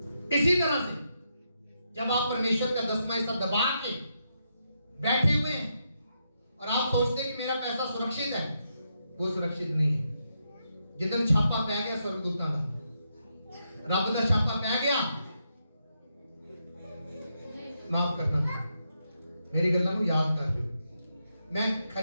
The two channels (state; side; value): inverted; both; correlation -0.81